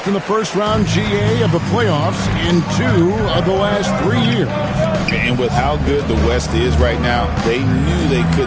in the first round GA of the playoffs in 2 of the last 3 years. And with how good the West is right now, they knew they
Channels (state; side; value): identical; both; correlation 1.00